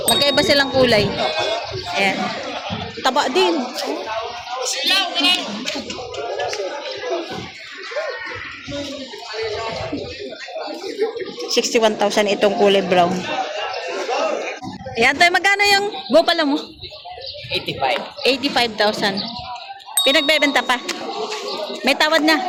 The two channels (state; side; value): identical; both; correlation 1.00